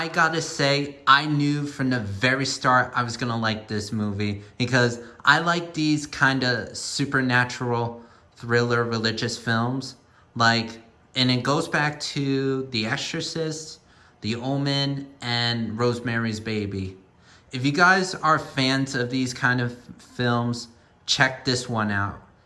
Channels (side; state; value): both; identical; correlation 1.00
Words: gotta say, I knew from the very start I was gonna like this movie because I like these kind of supernatural thriller religious films. Like, and it goes back to The Exorcist, The Omen, and Rosemary's Baby. If you guys are fans of these kind of films, check this one out.